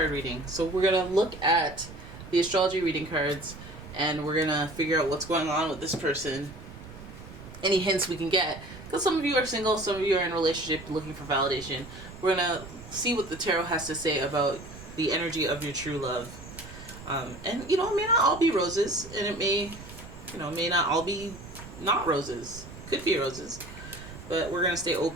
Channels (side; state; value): right; noise; rumble, 15 dB below the sound